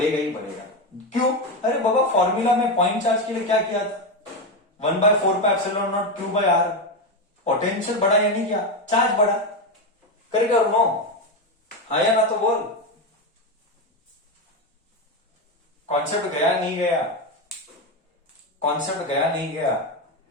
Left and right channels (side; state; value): both; normal; correlation 0.12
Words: ही बढ़ेगा। क्यों? अरे बाबा फॉर्मूला में पॉइंट चार्ज के लिए क्या किया था, 1/4 pi epsilon naught Q by R. Potential बढ़ा या नहीं किया, चार्ज बढ़ा, करेगा नो, हाँ या ना तो बोल। कॉन्सेप्ट गया नहीं गया, कॉन्सेप्ट गया नहीं गया।